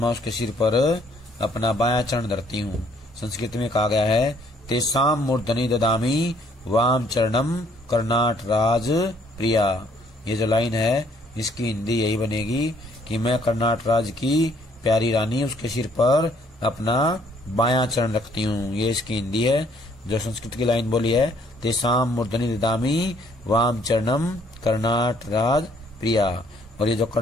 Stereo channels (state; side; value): normal; both; correlation 0.64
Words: उसके सिर पर अपना बायां चरण धरती हूँ। संस्कृत में कहा गया है तेसाम मूर्धनि ददामी वाम चरणम कर्नाट राज प्रिया। ये जो लाइन है इसकी हिंदी यही बनेगी कि मैं कर्नाट राज की प्यारी रानी उसके सिर पर अपना बायां चरण रखती हूँ। ये इसकी हिंदी है। जो संस्कृत की लाइन बोली है तेसाम मूर्धनि ददामी वाम चरणम कर्नाट राज प्रिया। और ये जो